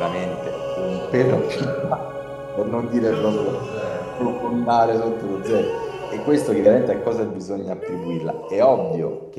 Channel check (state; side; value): identical; both; correlation 1.00